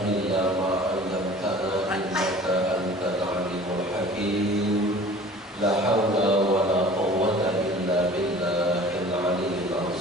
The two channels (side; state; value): both; normal; correlation 0.45